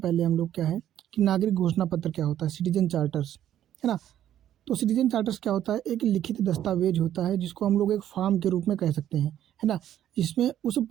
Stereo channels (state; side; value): quieter; left; 11.3 dB